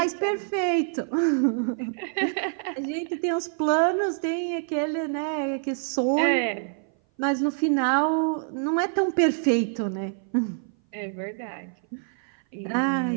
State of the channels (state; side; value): silent; left; 57 dB below the other